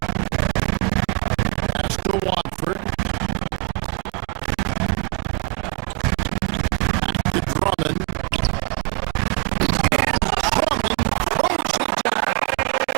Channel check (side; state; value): left; quieter; 31.9 dB